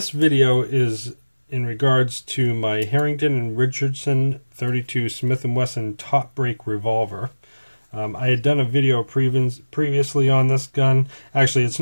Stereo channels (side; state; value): both; inverted; correlation -1.00